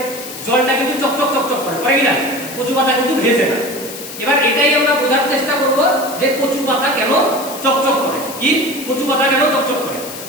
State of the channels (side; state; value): left; noise; hiss, 11 dB below the sound